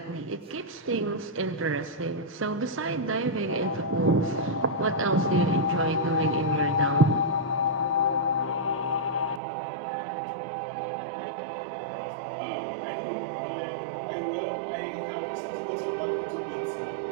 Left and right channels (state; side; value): drops out; left; at 9.4 s